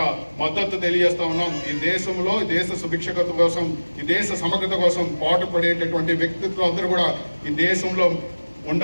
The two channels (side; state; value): both; inverted; correlation -1.00